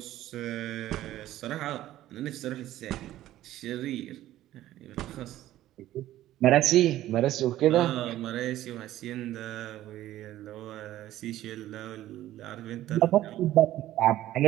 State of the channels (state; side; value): quieter; left; 14.1 dB